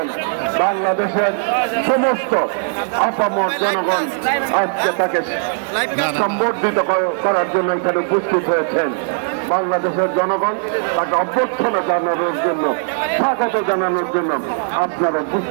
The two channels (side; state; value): left; silent; digital silence